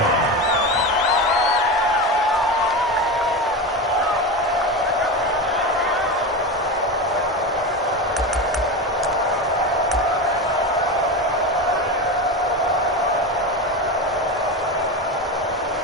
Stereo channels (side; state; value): both; normal; correlation 0.21